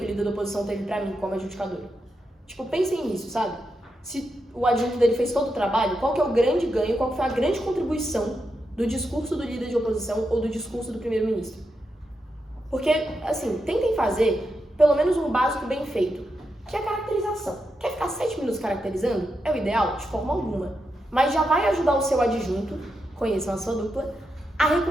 o líder da oposição teve pra mim como adjudicadora? Tipo, pensem nisso, sabe? Se o adjunto dele fez todo o trabalho, qual que é o grande ganho, qual que foi a grande contribuição do discurso do líder de oposição ou do discurso do primeiro-ministro? Porque, assim, tentem fazer pelo menos um básico bem feito, que é a caracterização. Quer ficar 7 minutos caracterizando? É o ideal? De forma alguma. Mas já vai ajudar o seu adjunto, conheçam a sua dupla, a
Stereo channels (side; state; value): both; normal; correlation 0.85